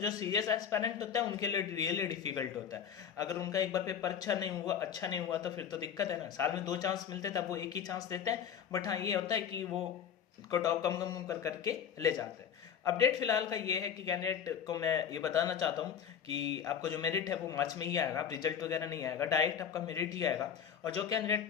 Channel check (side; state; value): right; quieter; 8.1 dB